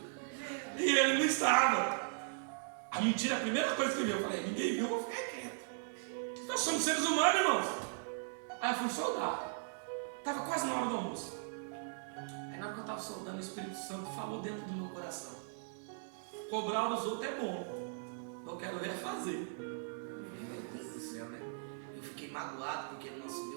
E ele não estava. A mentira, a primeira coisa que eu vi, eu falei: ninguém viu, eu fiquei quieto. Nós somos seres humanos, irmãos. Aí eu fui soldar. Estava quase na hora do almoço. Aí na hora que eu estava soldando, o Espírito Santo falou dentro do meu coração: cobrar os outros é bom, eu quero ver fazer. Meu Deus do céu, né? Eu fiquei magoado porque ele não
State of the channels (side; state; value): left; silent; digital silence